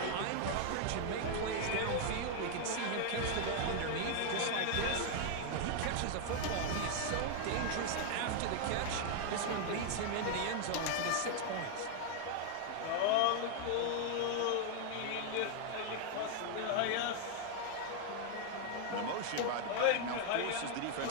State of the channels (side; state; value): both; different; correlation 0.00